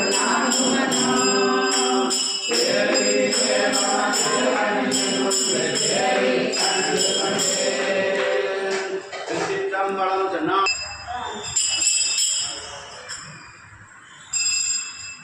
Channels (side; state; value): both; identical; correlation 1.00